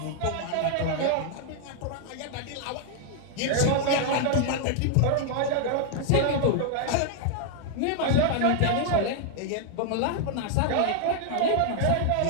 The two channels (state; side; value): different; both; correlation 0.00